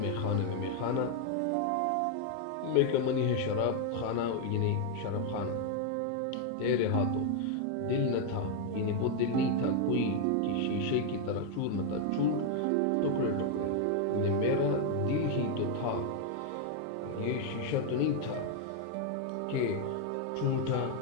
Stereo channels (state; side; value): different; both; correlation 0.00